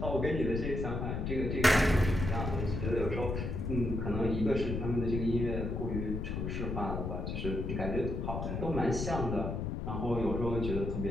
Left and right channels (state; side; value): noise; left; rumble, 2 dB below the sound